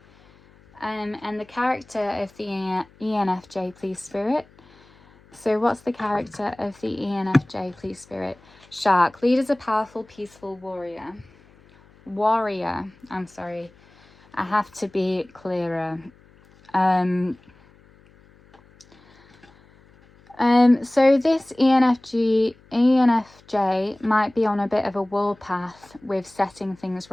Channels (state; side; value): noise; left; hum, 28 dB below the sound